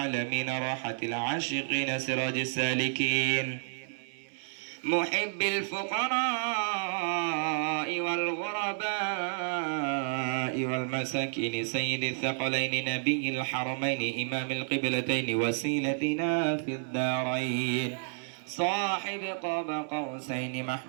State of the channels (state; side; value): silent; left; 57 dB below the other